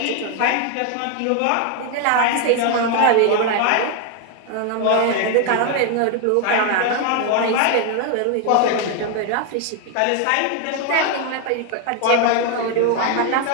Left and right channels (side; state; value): both; different; correlation 0.01